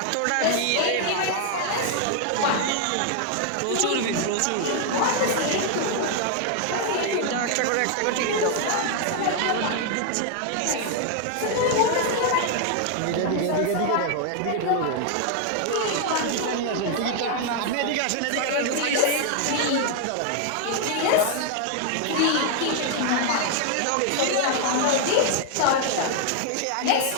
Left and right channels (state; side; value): different; both; correlation 0.00